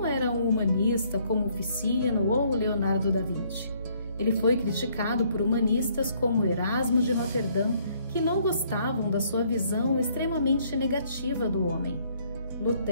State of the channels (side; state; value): both; inverted; correlation -0.66